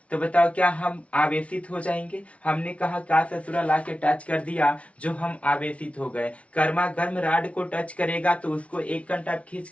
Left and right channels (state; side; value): late; right; 0.063 ms